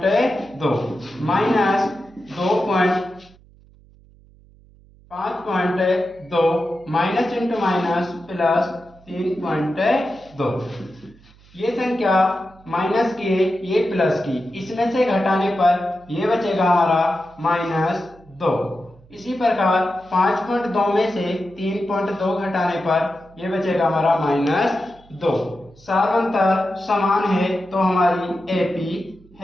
minus 5.2 minus into minus plus 3.2। ये संख्या माइनस की है, ये प्लस की, इसमें से घटाने पर ये बचेगा हमारा -2। इसी प्रकार 5.2 में से 3.2 घटाने पर ये बचेगा हमारा -2। सार्वंतर समान है तो हमारी एपी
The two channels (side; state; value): right; noise; hum, 26 dB below the sound